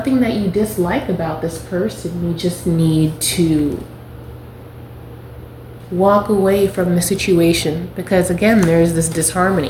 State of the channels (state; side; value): identical; both; correlation 1.00